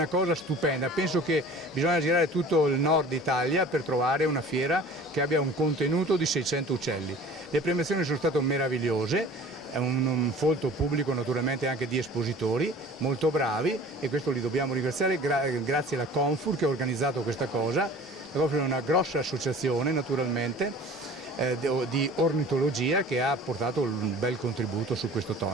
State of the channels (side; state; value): both; normal; correlation 0.44